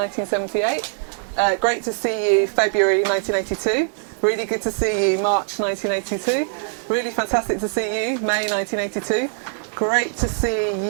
Great to see you, February 1982. Really good to see you, March 1982. Really fantastic to see you, May 1982. Great to see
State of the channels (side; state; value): left; silent; digital silence